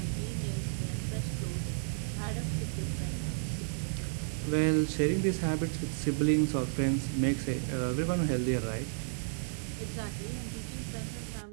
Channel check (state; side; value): silent; left; digital silence